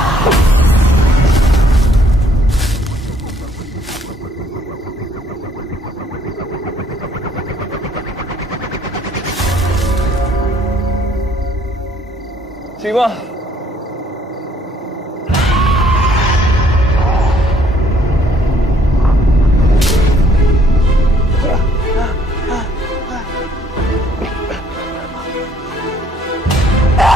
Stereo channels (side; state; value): both; normal; correlation 0.64